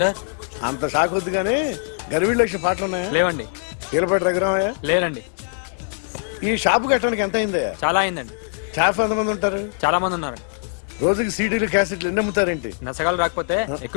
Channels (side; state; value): right; silent; 64 dB below the other